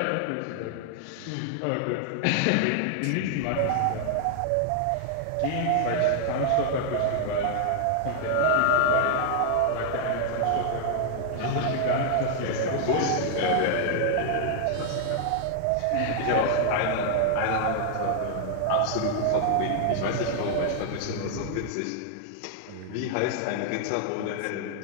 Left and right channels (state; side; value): different; both; correlation 0.00